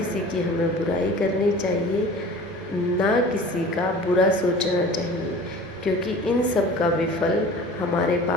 की हमें बुराई करनी चाहिए, ना किसी का बुरा सोचना चाहिए, क्योंकि इन सब का विफल हमारे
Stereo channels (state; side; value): normal; both; correlation 0.42